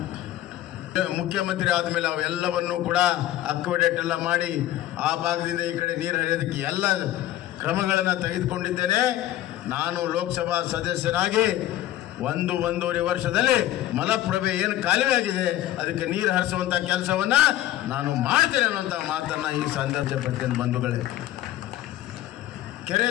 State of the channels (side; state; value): right; quieter; 14.0 dB